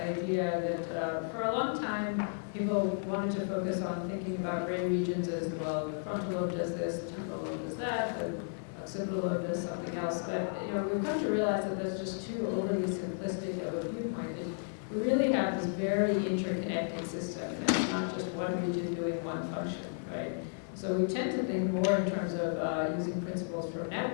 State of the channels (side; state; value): right; silent; digital silence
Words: that for a long time, people wanted to focus on thinking about brain regions as, well, the frontal lobe does this, the temporal lobe does that, the occipital lobe does something else. But we've come to realize that that's just too overly simplistic of a viewpoint. We really have this very interconnected system, and it's not just one region doing one function, right? So we tend to think more in terms of using principles from